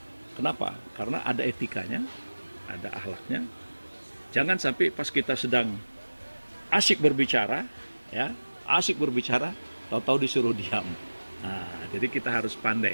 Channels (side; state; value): both; inverted; correlation -1.00